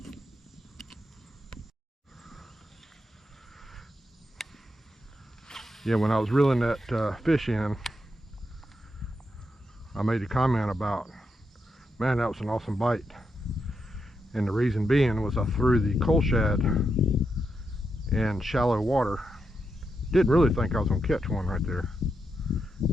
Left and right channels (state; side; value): normal; both; correlation 0.84